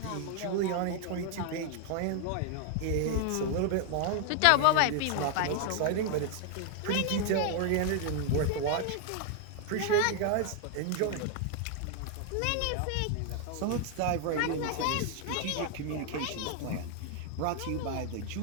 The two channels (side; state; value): both; different; correlation 0.00